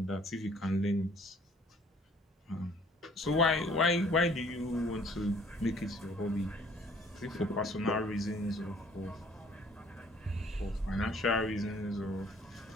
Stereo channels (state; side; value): normal; both; correlation 0.57